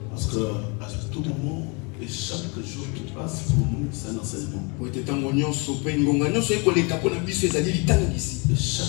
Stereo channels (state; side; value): quieter; right; 31.6 dB